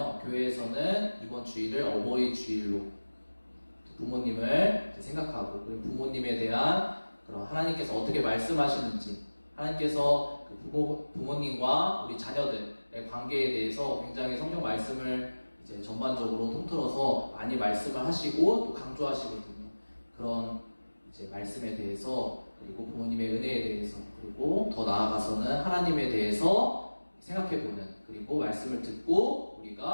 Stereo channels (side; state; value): both; inverted; correlation -1.00